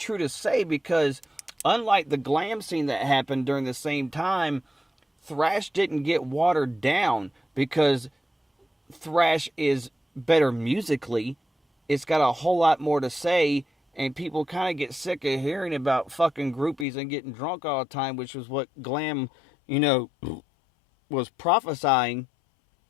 to say, because unlike the glam scene that happened during the same time, thrash didn't get watered down, because thrash is better musically. It's got a whole lot more to say, and people kind of get sick of hearing about fucking groupies and getting drunk all the time, which was what glam, was prophesying.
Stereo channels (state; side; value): drops out; right; at 16.9 s